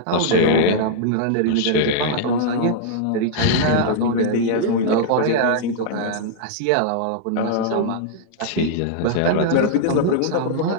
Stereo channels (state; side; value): different; both; correlation -0.01